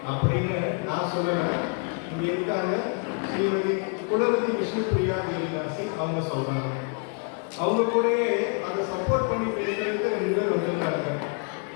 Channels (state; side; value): quieter; right; 39.1 dB